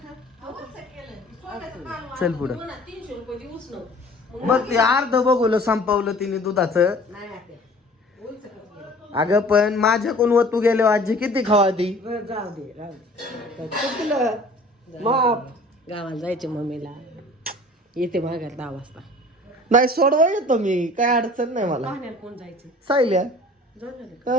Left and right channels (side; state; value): both; normal; correlation 0.47